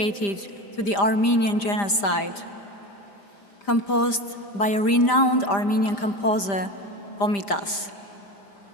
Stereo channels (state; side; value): late; right; 5.0 ms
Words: to the Armenian genocide, composed by a renowned Armenian composer, Komitas.